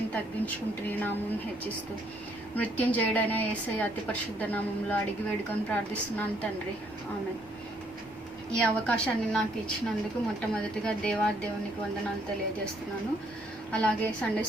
తగ్గించుకుంటూ నీ నామం హెచ్చిస్తూ మృత్యుంజయుడైన యేసయ్య అతి పరిశుద్ధ నామంలో అడిగి వేడుకొని ప్రార్థిస్తున్నాను తండ్రి, ఆమేన్. ఈ అవకాశాన్ని నాకు ఇచ్చినందుకు మొట్టమొదటిగా దేవునికి వందనాలు తెలియజేస్తున్నాను. అలాగే Sunday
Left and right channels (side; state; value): both; normal; correlation 0.68